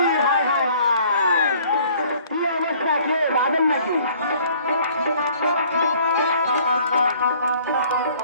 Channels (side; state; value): both; inverted; correlation -0.56